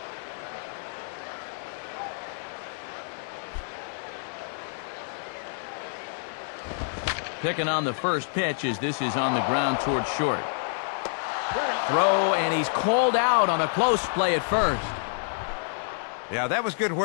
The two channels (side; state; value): right; silent; digital silence